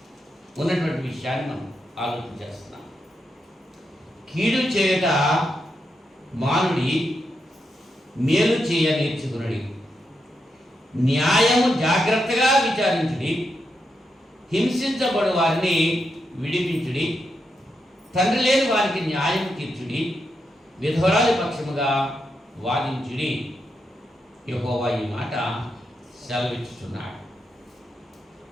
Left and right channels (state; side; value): normal; both; correlation 0.84